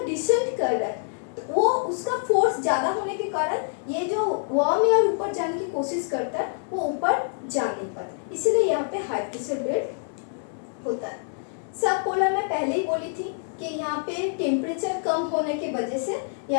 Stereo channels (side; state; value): right; silent; digital silence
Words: डिसेंट कर रहा है वो उसका फोर्स ज़्यादा होने के कारण ये जो वार्म एयर ऊपर जाने की कोशिश करता है वो ऊपर जा नहीं पाता, इसीलिए यहाँ पे हाई प्रेशर बेल्ट होता है। सब पोलर में पहले ही बोली थी कि यहाँ पे टेम्परेचर कम होने की वजह से